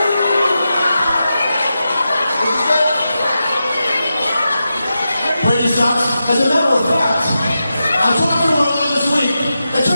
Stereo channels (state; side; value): inverted; both; correlation -0.90